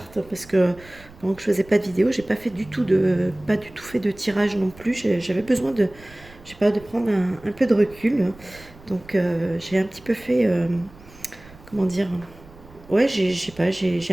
parce que pendant que je faisais pas de vidéo, j'ai pas du tout fait de tirage non plus. J'avais besoin de, je sais pas, de prendre un peu de recul. Donc, j'ai un petit peu fait, comment dire, ouais, je sais pas, j'ai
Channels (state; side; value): noise; right; rumble, 22 dB below the sound